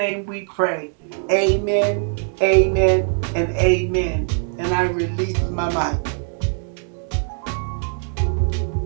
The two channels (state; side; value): silent; left; 55 dB below the other